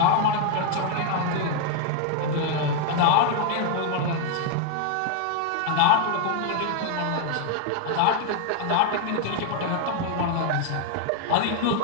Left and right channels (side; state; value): both; different; correlation 0.00